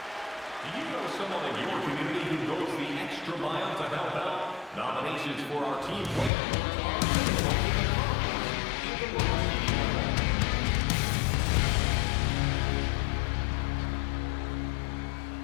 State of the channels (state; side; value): drops out; right; at 6.3 s